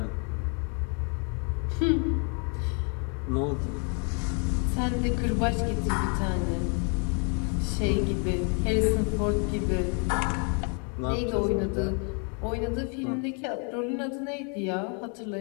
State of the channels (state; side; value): quieter; right; 37.3 dB